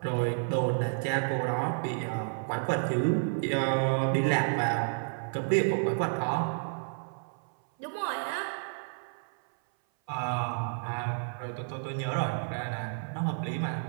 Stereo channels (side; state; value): left; silent; 57 dB below the other